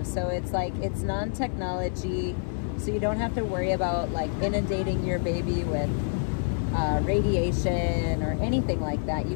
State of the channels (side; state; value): right; silent; 60 dB below the other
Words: So it's like, it's non-technology, so you don't have to worry about like inundating your baby with radiation or anything like that. You